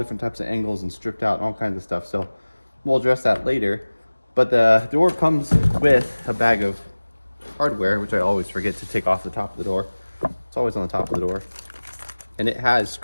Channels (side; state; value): both; inverted; correlation -1.00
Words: types of angles and stripped out and all kinds of stuff. So we'll address that later. But the door comes with a bag of hardware, which I always forget to take off the top of the door. It's always on the top of the door. And it has